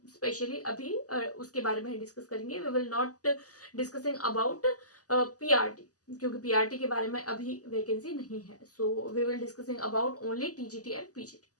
स्पेशली अभी उसके बारे में डिस्कस करेंगे। We will not discussing about PRT, क्योंकि पीआरटी के बारे में अभी वैकेंसी नहीं है। So we will discussing about only TGT and PGT.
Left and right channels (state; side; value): late; right; 0.67 ms